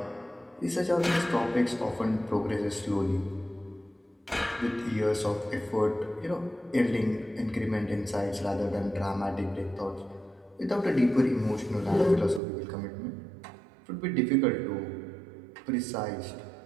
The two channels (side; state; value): left; drops out; at 12.4 s